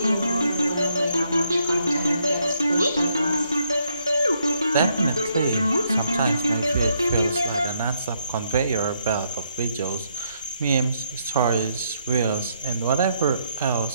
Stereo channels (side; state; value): both; inverted; correlation -0.74